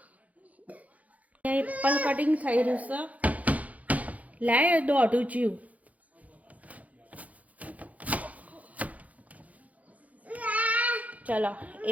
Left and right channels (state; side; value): late; left; 0.071 ms